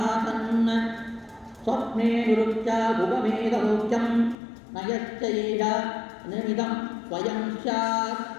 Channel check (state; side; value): drops out; right; at 4.4 s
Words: ಸ್ವಪ್ನೇ ನಿರುಚ್ಯ ಭುಗಮೇಧಲೋಕ್ಯಂ ನಯಶ್ಚ ಏಷ ನಿಮಿದಂ ಸ್ವಯಂ ಸ್ಯಾತ್.